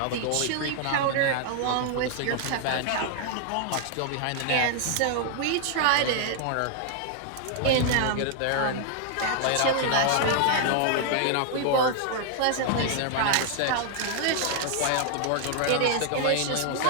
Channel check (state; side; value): different; both; correlation 0.00